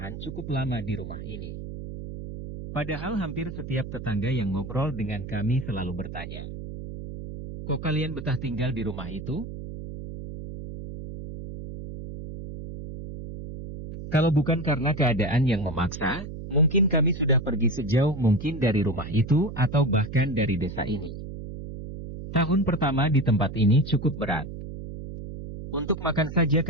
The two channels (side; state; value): right; noise; hum, 9 dB below the sound